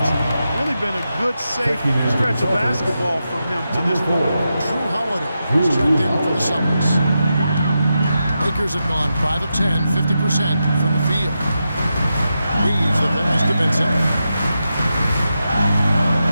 really been a good, safe stretch of basketball from him to this point. Drew Holiday is checked in for the Celtics. Lakers have gone 5 of 10, 50% from the field. Reeves the pass to Vincent.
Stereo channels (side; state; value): both; inverted; correlation -0.88